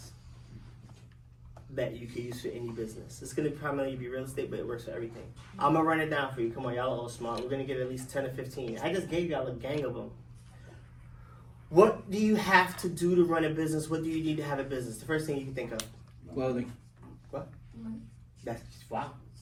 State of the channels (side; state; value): both; identical; correlation 1.00